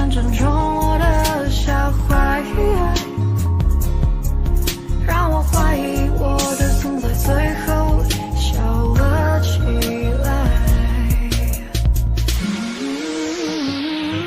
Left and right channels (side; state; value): both; identical; correlation 1.00